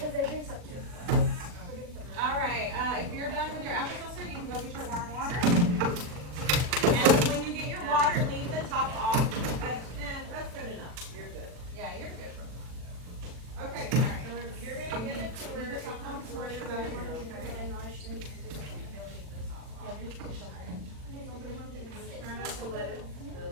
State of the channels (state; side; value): late; left; 40 ms